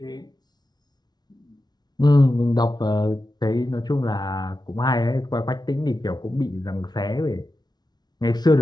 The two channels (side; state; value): right; late; 0.20 ms